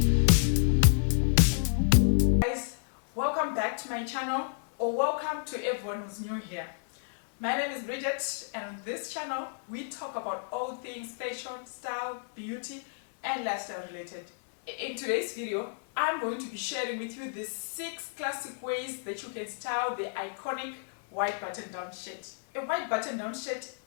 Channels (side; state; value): right; silent; digital silence